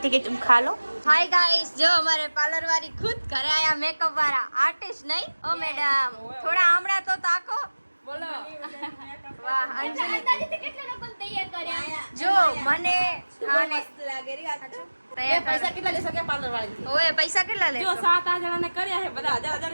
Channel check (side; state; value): both; inverted; correlation -1.00